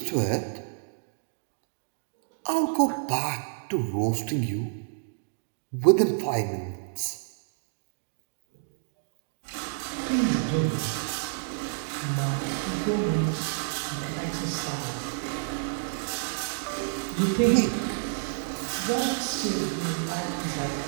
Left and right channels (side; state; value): left; silent; digital silence